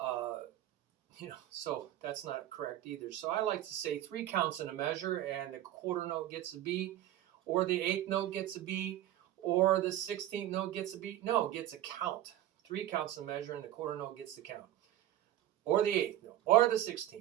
So that's not correct either. So I like to say 3 counts in a measure, and the quarter note gets a beat, or the 8th note gets a beat, or the 16th note gets a beat. No, it gets a count. 3 counts in a measure, and the quarter note gets the count. Or the 8th note, or the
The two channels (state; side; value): quieter; left; 13.3 dB